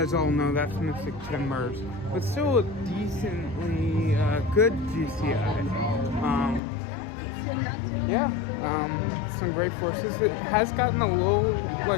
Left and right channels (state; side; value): drops out; right; at 6.6 s